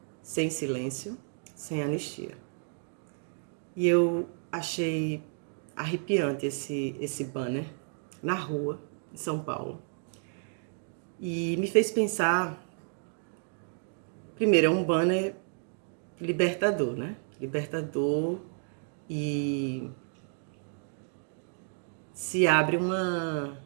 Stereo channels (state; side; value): silent; left; 57 dB below the other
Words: sem silêncio, sem anistia. E eu achei arrepiante esse banner na rua, em São Paulo. E me fez pensar, primeiro, é um banner libertador, né? Libertador, e se abre uma